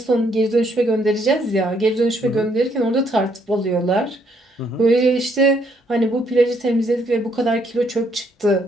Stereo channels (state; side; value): normal; both; correlation 0.70